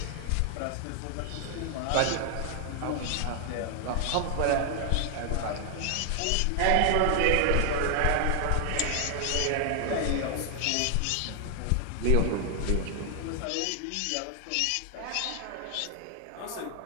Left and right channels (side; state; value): both; different; correlation 0.00